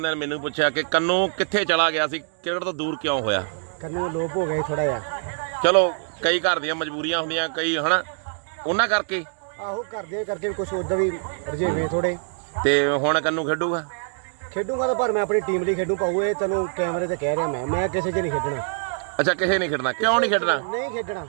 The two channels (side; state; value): left; silent; digital silence